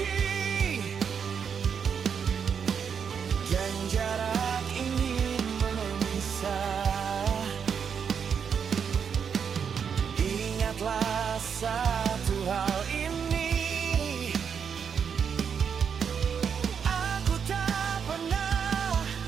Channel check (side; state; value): left; quieter; 7.0 dB